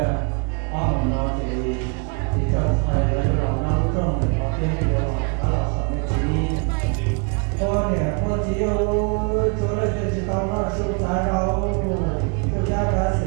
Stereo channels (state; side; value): quieter; left; 35.0 dB